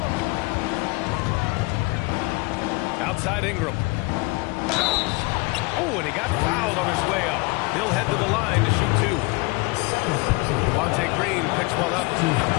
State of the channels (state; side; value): quieter; right; 26.3 dB